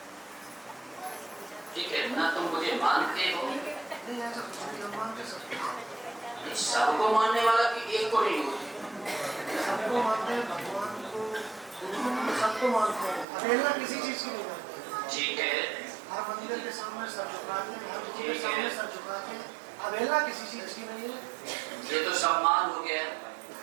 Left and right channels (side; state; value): left; drops out; at 13.2 s